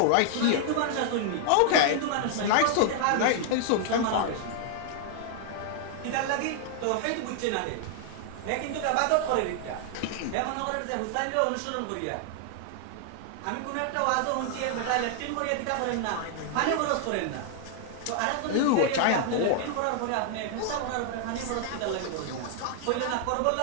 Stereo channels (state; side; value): different; both; correlation 0.00